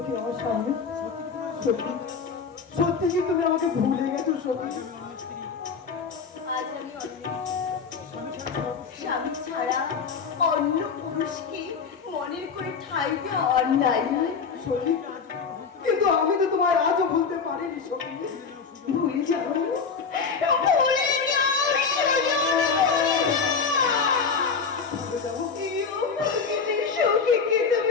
আমার সামনে সত্যি সত্যি কি তুমি আমাকে ভুলে গেছো সত্যি আজ আমি স্বামী ছাড়া অন্য পুরুষকে মনের করে ঠাই দেওয়া অন্যায়। সখী কিন্তু আমি তো তোমায় আজও ভুলতে পারিনি সখী ভুলে যাও, ভুলে যাও সুজন, ভুলে যাবো সখীকে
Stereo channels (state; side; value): quieter; right; 5.5 dB